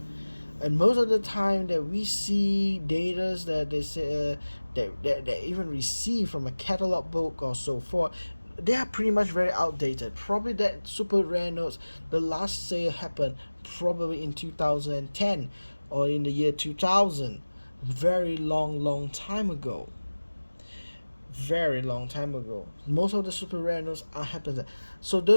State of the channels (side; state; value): both; inverted; correlation -1.00